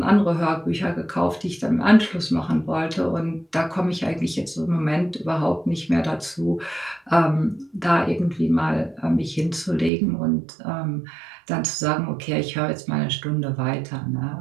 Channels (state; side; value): drops out; left; at 9.9 s